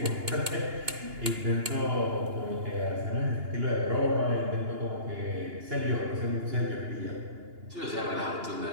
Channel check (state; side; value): late; left; 2.9 ms